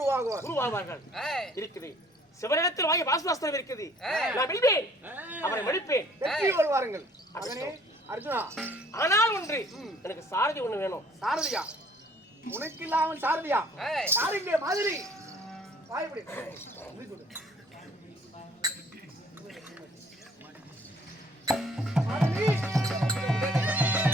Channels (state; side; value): normal; both; correlation 0.57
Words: இருக்குது. சிவனிடத்தில் வாங்கி வாசுவாஸ்திரம் இருக்குது. நான் வெல்வேன், அவரை மடிப்பேன், வெற்றி கொள்வார்கள். அர்ஜுனா, ஆனால் ஒன்று, எனக்கு சாரதி ஒண்ணு வேணும். சாரதியா? உனக்கு இல்லாமல் சாரதியா? சாரதிய மாதிரி வாய்ப்படி